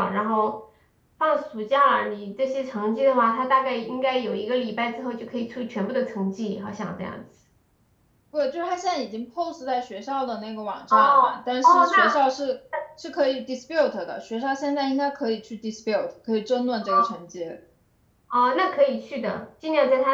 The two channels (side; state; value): both; identical; correlation 1.00